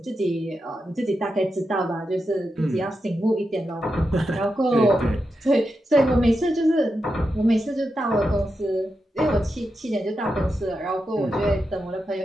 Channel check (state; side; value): normal; both; correlation 0.88